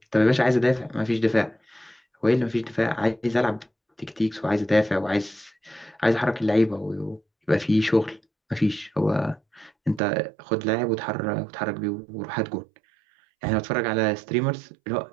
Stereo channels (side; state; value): left; drops out; at 10.0 s